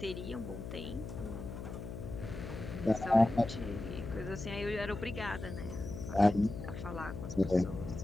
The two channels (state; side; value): noise; left; hum, 8 dB below the sound